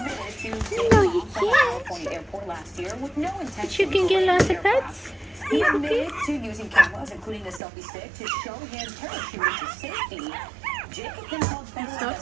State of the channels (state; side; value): drops out; left; at 7.6 s